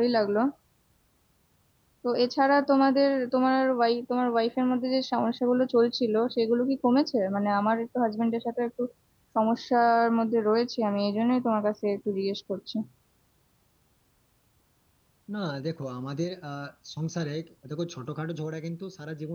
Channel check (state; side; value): identical; both; correlation 1.00